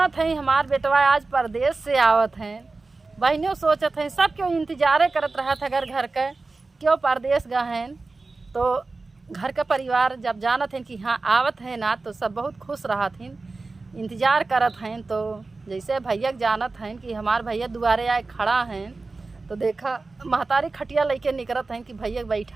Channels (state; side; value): quieter; left; 3.7 dB